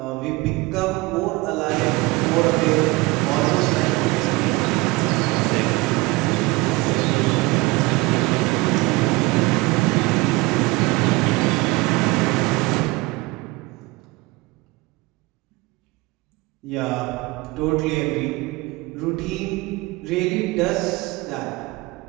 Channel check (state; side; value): quieter; left; 22.7 dB